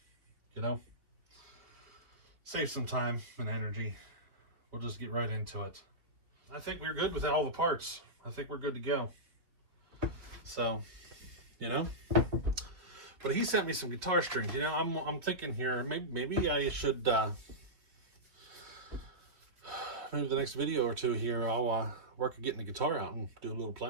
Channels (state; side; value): late; left; 3.3 ms